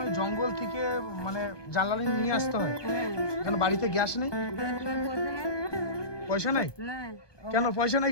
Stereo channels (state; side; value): late; right; 1.2 ms